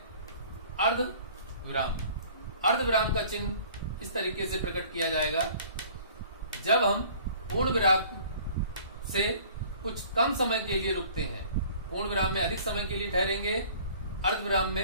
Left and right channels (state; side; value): inverted; both; correlation -0.51